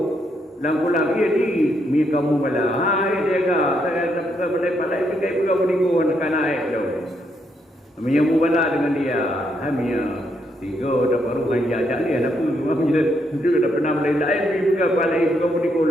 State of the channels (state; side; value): normal; both; correlation 0.77